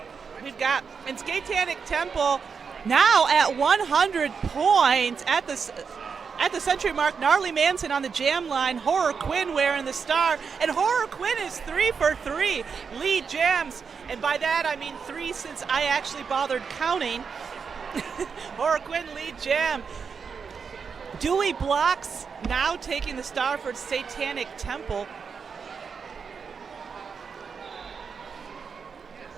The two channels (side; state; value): left; quieter; 5.9 dB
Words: We've got in Skatetanic Temple now at 100 points at the century mark. Gnarly Manson on the jam line. Horror Quinn wearing the star, and Horror Quinn is 3 for 3 lead jams, and by that I mean 3 since I actually bothered counting. Horror Quinn lead jam. Dewey Blocks now taking the star for Satanic Temple.